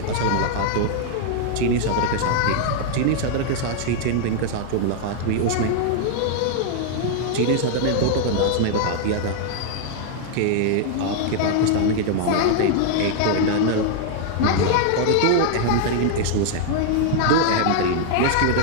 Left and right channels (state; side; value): different; both; correlation -0.01